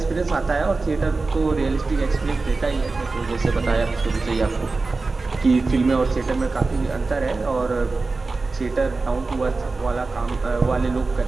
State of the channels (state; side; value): quieter; left; 3.8 dB